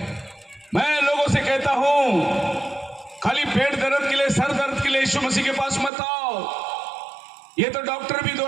मैं लोगों से कहता हूं, खाली पेट दर्द के लिए, सर दर्द के लिए यीशु मसीह के पास मत आओ। ये तो डॉक्टर भी 2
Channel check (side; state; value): left; drops out; at 5.9 s